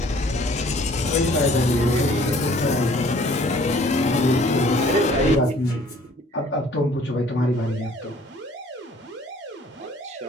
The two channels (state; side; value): normal; both; correlation 0.55